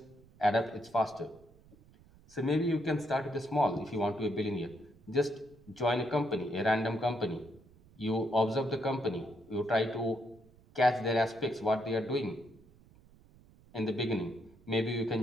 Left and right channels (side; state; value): right; noise; rumble, 26 dB below the sound